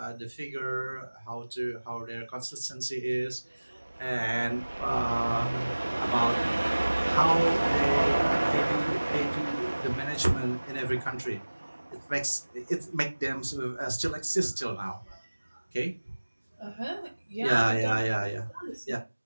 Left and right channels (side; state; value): both; inverted; correlation -1.00